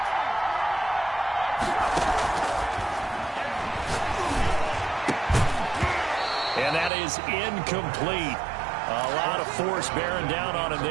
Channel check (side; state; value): left; drops out; at 6.9 s